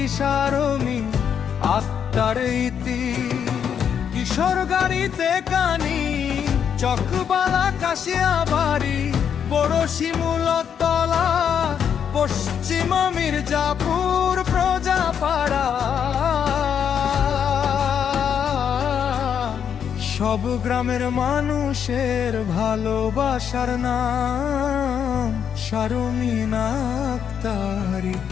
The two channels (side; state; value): right; quieter; 8.0 dB